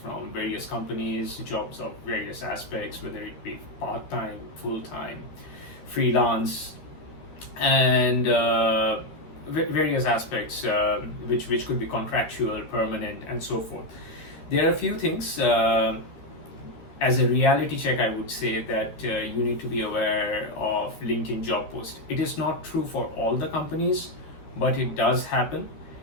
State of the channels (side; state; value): right; late; 13 ms